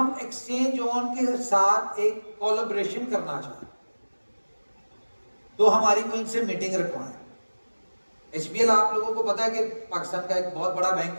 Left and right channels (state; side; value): inverted; both; correlation -1.00